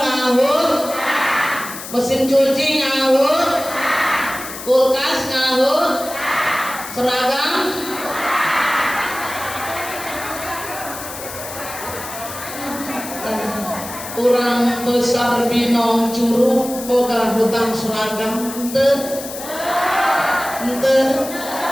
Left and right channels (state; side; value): noise; left; hiss, 11 dB below the sound